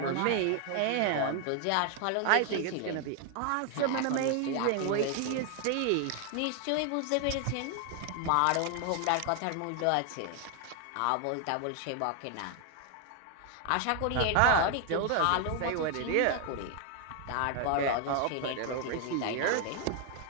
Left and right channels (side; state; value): both; different; correlation 0.00